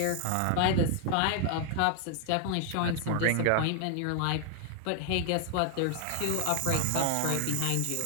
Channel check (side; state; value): both; different; correlation 0.00